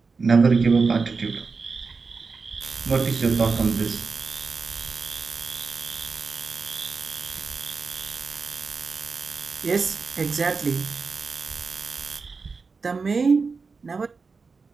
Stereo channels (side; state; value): left; quieter; 4.6 dB